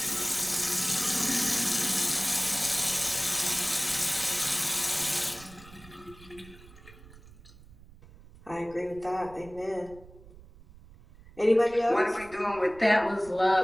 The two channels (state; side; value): noise; right; rumble, 21 dB below the sound